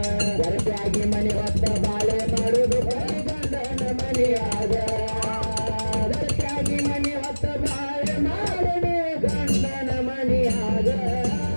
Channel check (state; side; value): inverted; both; correlation -1.00